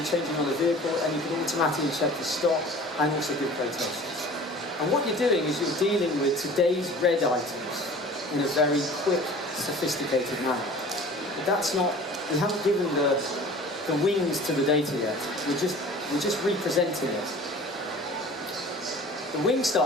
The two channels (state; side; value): normal; both; correlation 0.44